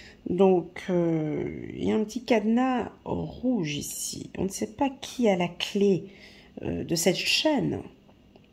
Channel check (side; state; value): both; identical; correlation 1.00